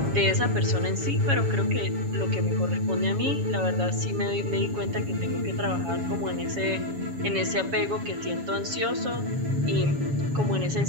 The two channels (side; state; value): left; late; 7.2 ms